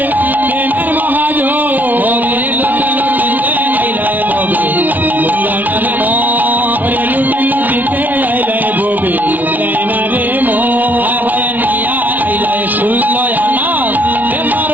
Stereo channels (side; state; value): left; late; 0.079 ms